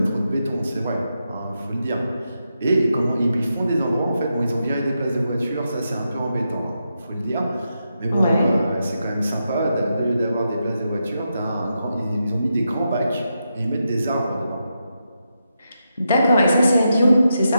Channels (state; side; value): inverted; both; correlation -0.86